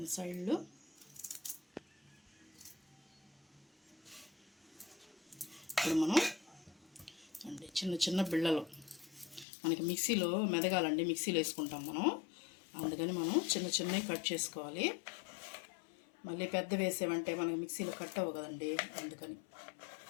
సైడ్లు ఇప్పుడు మనం అండి చిన్న చిన్న బిళ్ళలు మనకి మిక్సీలో మెదగాలండి, మిక్సీలో వేసుకుంటాం మనం. అందుకని మనం చిన్న చిన్నవి కట్ చేసుకోవాలి. మళ్ళీ పెద్ద వేసేవంటే మనకి మిక్సీలో కట్ అవ్వ కదండి, అందుకని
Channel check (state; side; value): drops out; right; at 9.5 s